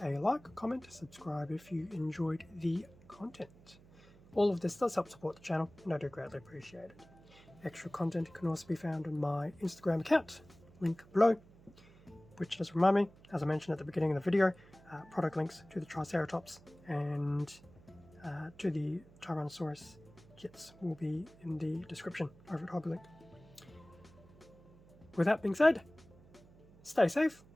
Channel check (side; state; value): right; noise; hum, 24 dB below the sound